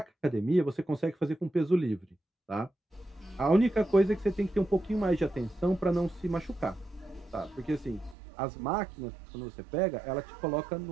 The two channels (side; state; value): left; drops out; at 8.2 s